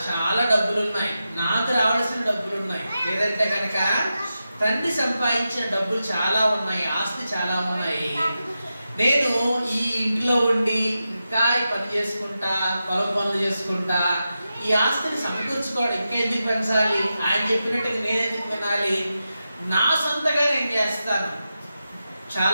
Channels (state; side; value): inverted; both; correlation -0.90